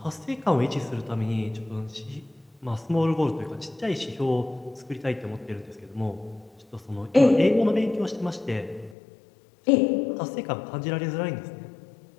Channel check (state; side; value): drops out; right; at 9.0 s